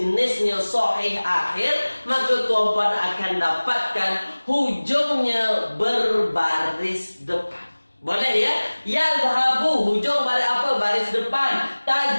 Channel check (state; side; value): inverted; both; correlation -1.00